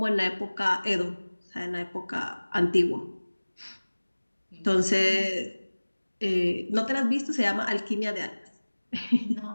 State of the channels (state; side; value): inverted; both; correlation -1.00